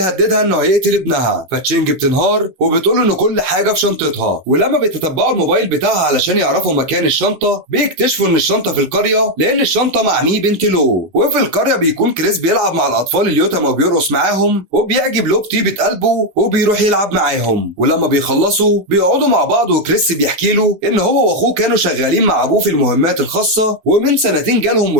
انه هيقتل ابنها، فتشينج بتنهار وبتقول له ان كل حاجة في شنطتها. ولما بيتتبعوا الموبايل بتاعها علشان يعرفوا مكان الشنطة بيكتشفوا ان الشنطة في القرية لان الشنطة مع مي بنت لو. وفي القرية بيكون كريس بيلعب مع الاطفال اليتامى وبيرقص معاهم، وبيعجب لو بطيبة قلبه وبيروح يلعب معاهم. ولما بيخلصوا بيقعدوا مع بعض، وكريس بيحكي له ان هو واخوه كانوا شغالين مع ابوه في المهمات الخاصة، ومن سنتين جالهم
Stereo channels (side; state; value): left; late; 12 ms